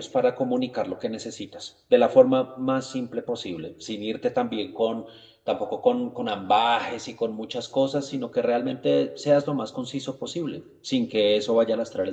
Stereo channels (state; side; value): identical; both; correlation 1.00